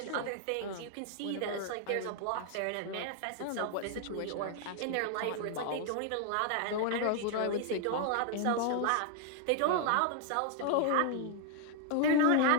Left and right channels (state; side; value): different; both; correlation 0.00